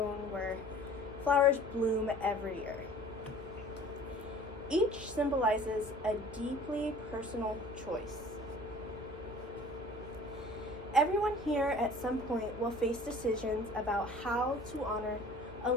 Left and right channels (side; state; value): both; normal; correlation 0.47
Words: where flowers bloom every year. Each symbolizes a deeply personal choice. Everyone here at some point will face decisions about how to honor a